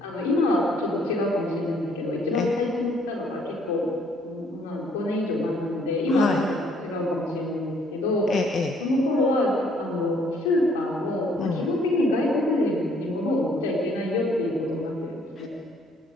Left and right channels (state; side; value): normal; both; correlation 0.64